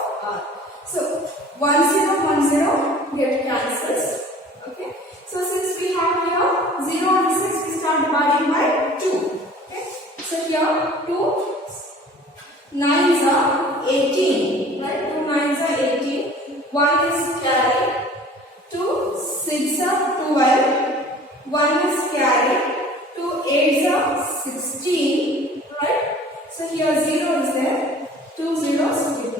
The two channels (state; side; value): normal; both; correlation 0.47